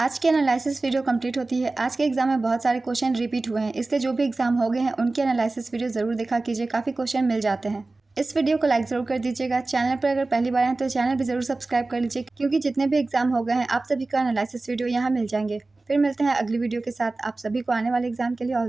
की एनालिसिस वीडियो कंप्लीट होती है। आज के एग्जाम में बहुत सारे क्वेश्चन रिपीट हुए हैं, इसलिए जो भी एग्जाम हो गए हैं उनके एनालिसिस वीडियो ज़रूर देखा कीजिए, काफ़ी क्वेश्चन मिल जाते हैं। इस वीडियो को लाइक ज़रूर कर दीजिएगा। चैनल पर अगर पहली बार हैं तो चैनल भी ज़रूर सब्सक्राइब कर लीजिए, क्योंकि जितने भी एग्जाम हो गए हैं आप सभी का एनालिसिस वीडियो यहाँ मिल जाएंगे। फिर मिलते हैं अगली वीडियो के साथ। आप सभी को आने वाले एग्जाम के लिए ऑल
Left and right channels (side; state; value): left; quieter; 3.3 dB